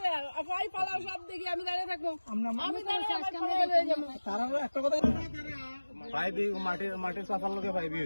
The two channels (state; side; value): inverted; both; correlation -1.00